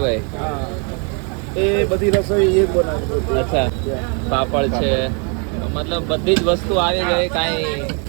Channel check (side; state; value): left; quieter; 36.7 dB